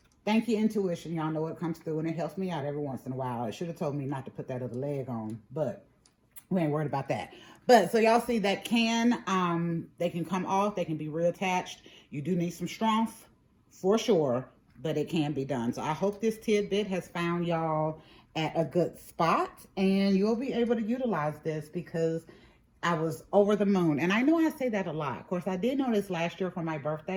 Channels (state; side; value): identical; both; correlation 1.00